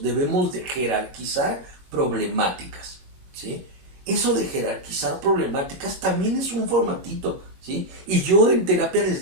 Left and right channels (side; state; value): left; late; 21 ms